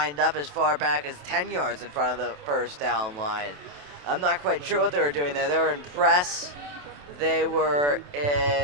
up as far back as 10 yards in front of the 1st down line. I'm not quite sure what they were doing there. They were in press. They were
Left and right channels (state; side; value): late; left; 28 ms